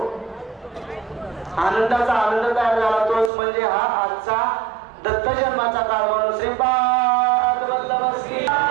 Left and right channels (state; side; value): drops out; left; at 3.3 s